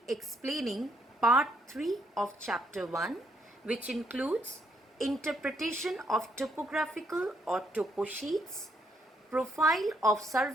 explaining part 3 of chapter 1, which includes interpretation of topographical or topo sheets, profile of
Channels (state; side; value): normal; both; correlation 0.72